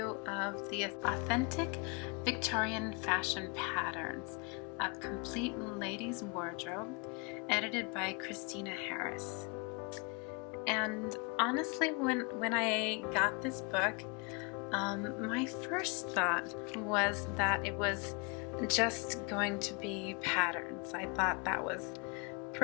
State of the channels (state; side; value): quieter; right; 32.1 dB